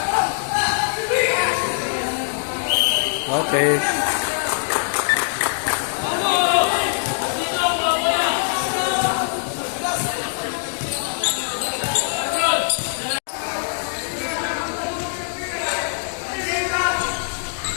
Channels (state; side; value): silent; right; digital silence